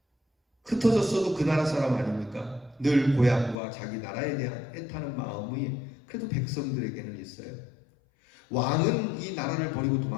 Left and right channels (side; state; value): right; drops out; at 3.6 s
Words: 흩어졌어도 그 나라 사람 아닙니까? 늘 고향과 자기 나라에 대한 애타는 마음이 그래도 백성들에게는 있어요. 왕은 이 나라를 버리고